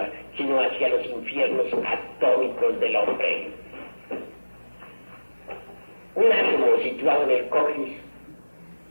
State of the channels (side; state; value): both; inverted; correlation -1.00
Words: sino hacia los infiernos atómicos del hombre. Un átomo situado en el coxis